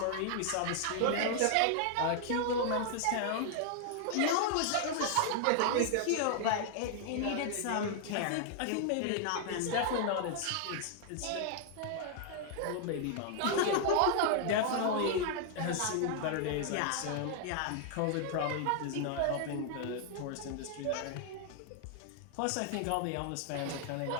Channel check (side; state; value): both; different; correlation 0.00